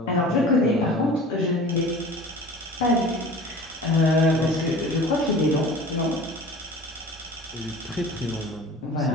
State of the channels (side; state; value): both; normal; correlation 0.41